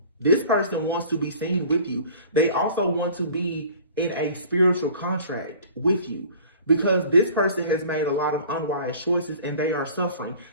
This person wants to be seen with you. They also want to be in a spiritual contract with you, because this person has made a lot of unwise choices and they are suffering.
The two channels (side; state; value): both; inverted; correlation -0.46